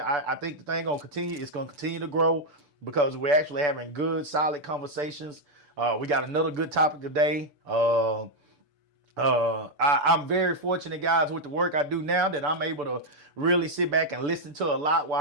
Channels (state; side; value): late; left; 6.9 ms